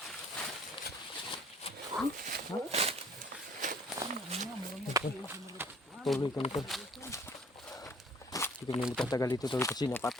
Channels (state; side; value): normal; both; correlation 0.55